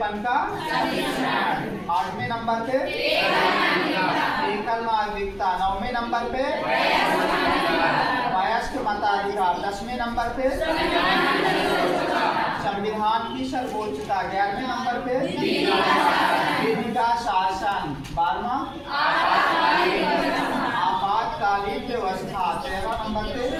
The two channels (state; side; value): identical; both; correlation 1.00